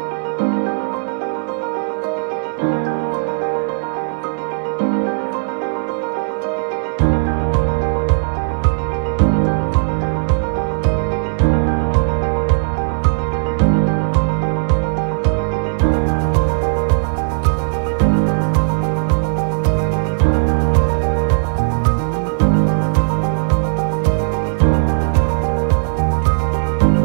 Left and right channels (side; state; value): left; silent; digital silence